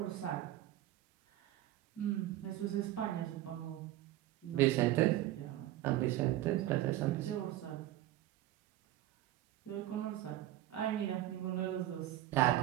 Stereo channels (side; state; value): left; quieter; 14.2 dB